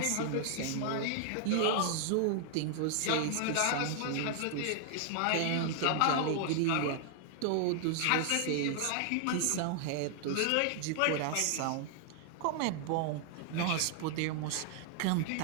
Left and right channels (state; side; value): different; both; correlation 0.00